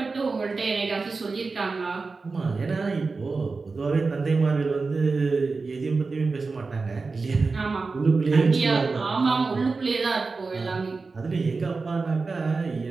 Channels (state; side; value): quieter; left; 4.1 dB